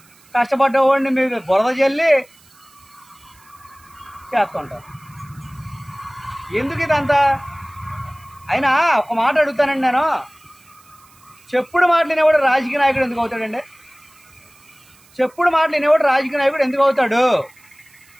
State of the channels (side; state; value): right; noise; hiss, 28 dB below the sound